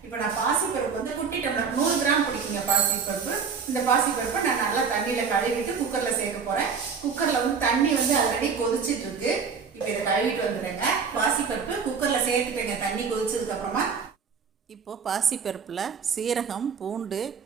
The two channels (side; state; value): left; quieter; 6.0 dB